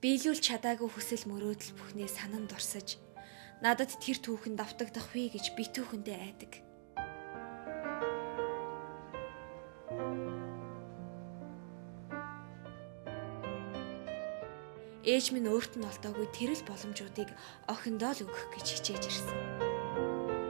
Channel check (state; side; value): silent; left; digital silence